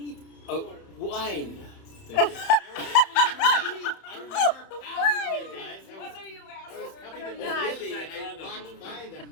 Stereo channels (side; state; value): right; late; 31 ms